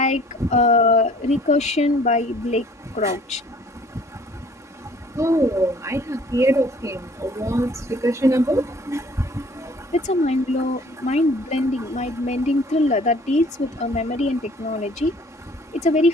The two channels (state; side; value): normal; both; correlation 0.54